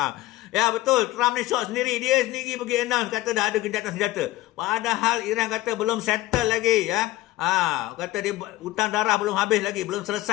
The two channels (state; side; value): quieter; right; 17.3 dB